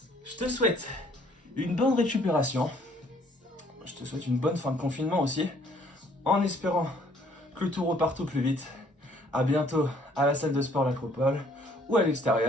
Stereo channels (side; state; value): both; normal; correlation 0.62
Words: Je te souhaite une bonne récupération. Je te souhaite une bonne fin de confinement aussi. En espérant que tout reparte au plus vite. À bientôt à la salle de sport L'Acropole ou à